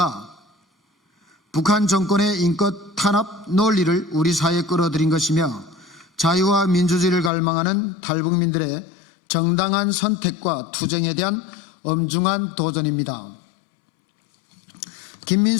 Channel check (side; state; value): right; drops out; at 7.3 s